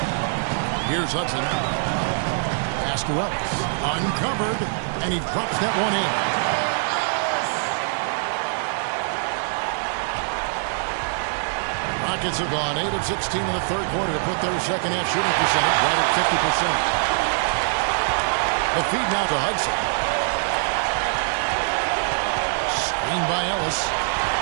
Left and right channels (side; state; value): left; silent; digital silence